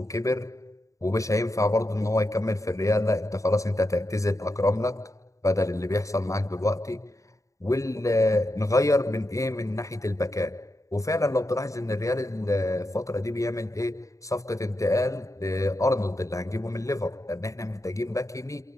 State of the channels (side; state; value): right; late; 0.16 ms